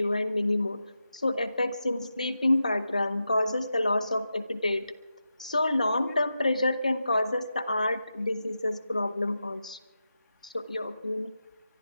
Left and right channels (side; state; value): both; inverted; correlation -0.89